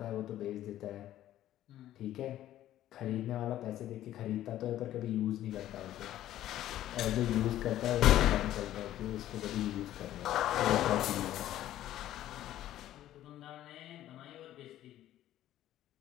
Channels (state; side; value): quieter; right; 13.1 dB